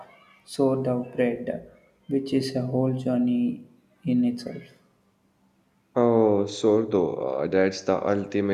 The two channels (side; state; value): both; identical; correlation 1.00